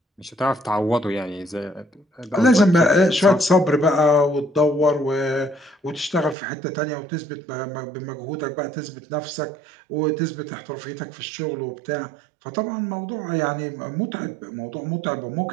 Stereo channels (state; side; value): drops out; left; at 6.4 s